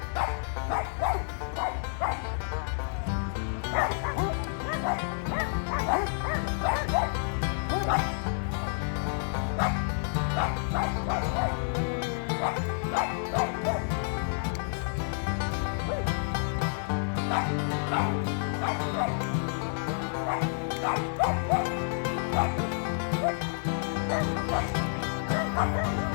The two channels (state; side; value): silent; right; digital silence